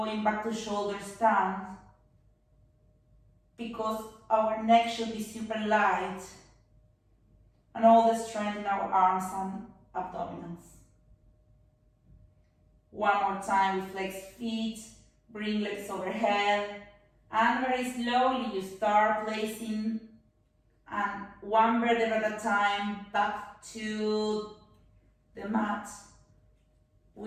back to shoulder stand, because our neck should be super light and all the strength in our arms and abdominals. One more time, we flex feet, bring legs overhead, and very slowly you start placing and one vertebra at a time back to the mat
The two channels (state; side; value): identical; both; correlation 1.00